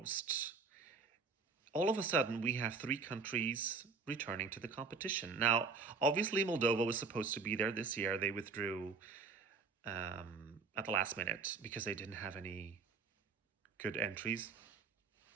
all of a sudden we have 3 countries returning to the competition. Now, obviously Moldova was supposed to be there this year. They withdrew at the last minute because they didn't have any good entries,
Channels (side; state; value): left; quieter; 4.7 dB